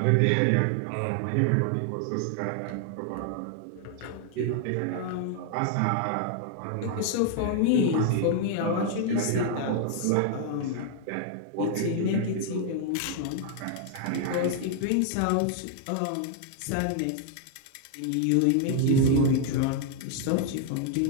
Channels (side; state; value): both; different; correlation 0.00